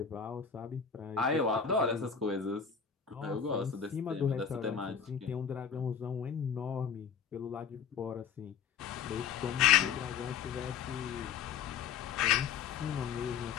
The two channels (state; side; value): quieter; right; 7.2 dB